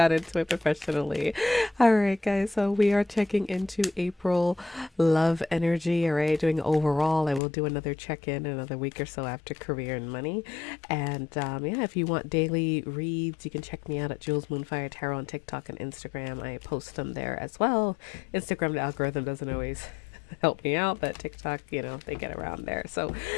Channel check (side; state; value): right; drops out; at 7.4 s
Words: into it professionally. All right, guys. So we are checking into April love energy. All right, doing overall. I will do another check in another week or so after career and money. And yeah, if you want daily reads, you can check me out at Jules Moonfire Tarot on TikTok and Instagram. I post them there as well. Instagram, the algorithm doesn't always help me out, but TikTok, they get around there. So